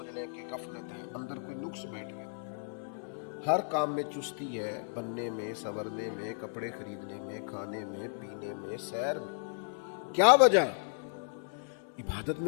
لیں کہ غفلت ہے، اندر کوئی نقص بیٹھ گیا۔ ہر کام میں چستی ہے، بننے میں، سنورنے میں، کپڑے خریدنے میں، کھانے میں، پینے میں، سیر میں۔ کیا وجہ؟ عبادت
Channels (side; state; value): right; silent; 55 dB below the other